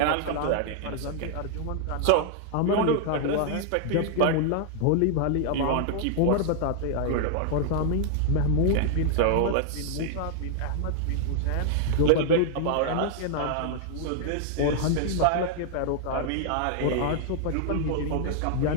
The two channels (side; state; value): both; different; correlation 0.00